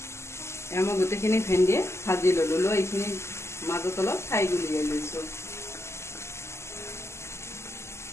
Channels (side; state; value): right; late; 0.13 ms